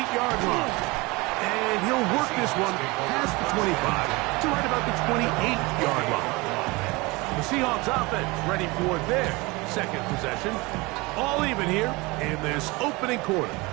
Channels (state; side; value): quieter; left; 24.2 dB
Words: line. And he'll work this one past the 25 to right about the 28-yard line. The Seahawks offense ready for their second possession. All even here in this opening quarter.